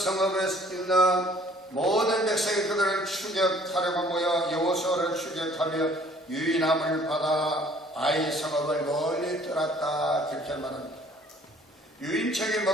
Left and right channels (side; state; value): both; normal; correlation 0.56